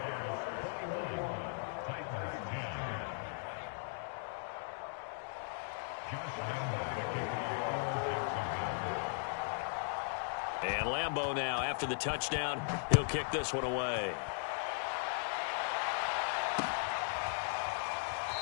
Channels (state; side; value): silent; right; digital silence